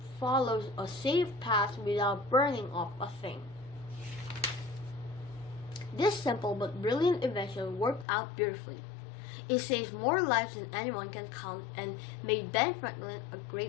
follow a safe path without burning up a thing. This simple but brilliant invention worked out beautifully. It saved more lives than anyone can count and made Ben Franklin a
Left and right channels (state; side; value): drops out; right; at 8.1 s